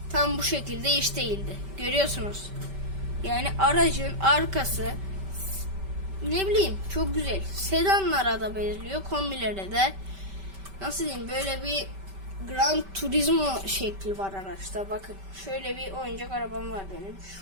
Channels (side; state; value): left; late; 5.2 ms